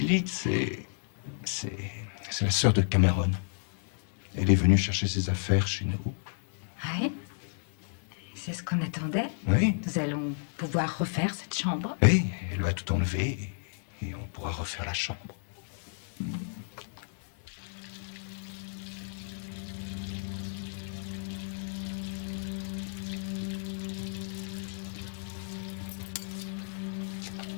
c'est la sœur de Cameron. Elle est venue chercher ses affaires chez nous. Oui. C'est ce qu'on attendait. Oui. Nous allons pouvoir refaire cette chambre. Et elle va tout enlever et on pourra refaire la chambre.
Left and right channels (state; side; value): silent; right; digital silence